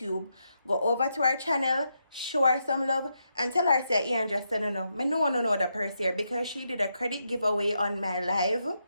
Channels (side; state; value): both; inverted; correlation -0.82